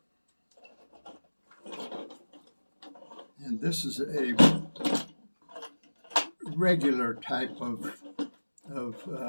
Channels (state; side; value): inverted; both; correlation -1.00